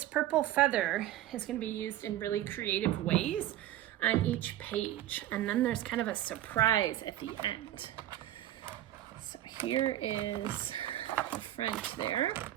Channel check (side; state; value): left; quieter; 13.5 dB